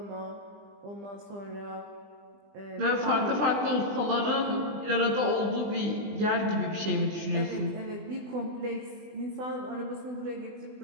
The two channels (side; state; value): left; late; 20 ms